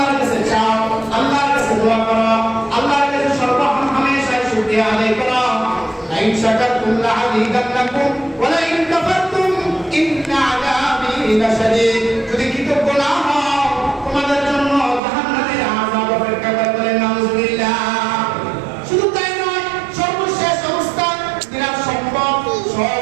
কাছে চাও, আল্লাহর কাছে দোয়া করো, আল্লাহর কাছে সর্বহামেশায় শুকরিয়া আদায় করো। লাইন শাকারতুম লা আযীদান্নাকুম ওয়া লাইন কাফারতুম ইন্না আযাবি লাশাদীদ। যদি কৃতজ্ঞ না হও, তোমাদের জন্য জাহান্নামের আযাব অপেক্ষা করে। বলেন নাউযুবিল্লাহ। শুধু তাই নয়, সর্বশেষ অবস্থায় তিনি সম্পদ সব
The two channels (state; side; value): drops out; left; at 15.0 s